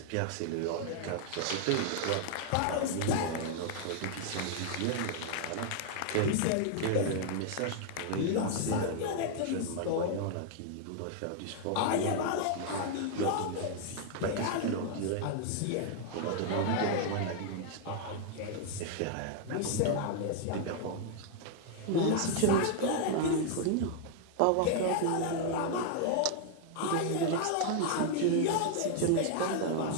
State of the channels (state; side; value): different; both; correlation 0.00